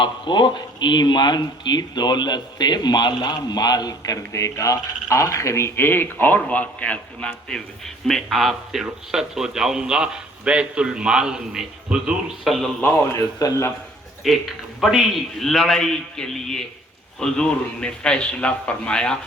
کو ایمان کی دولت سے مالا مال کر دے گا۔ آخری ایک اور واقعہ سناتے ہوئے میں آپ سے رخصت ہو جاؤں گا۔ بیت المال میں حضور صلی اللہ علیہ وسلم ایک بڑی لڑائی کے لیے حضور نے فیصلہ فرمایا۔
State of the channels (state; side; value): normal; both; correlation 0.55